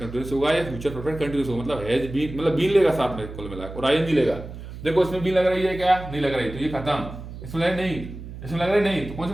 होगा, या फ्यूचर परफेक्ट कंटिन्यूअस होगा। मतलब हैज बीन, मतलब बीन लेगा साथ में कुल मिला, और आईएनजी लेगा। देखो इसमें बीन लग रही है क्या? नहीं लग रही, तो ये खत्म। इसमें लग नहीं, इसमें लग रही नहीं, तो कौन सा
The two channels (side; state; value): right; noise; hum, 12 dB below the sound